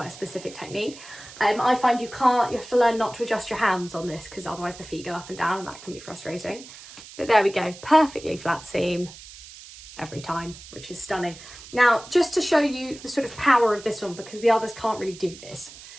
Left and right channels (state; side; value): noise; right; hiss, 17 dB below the sound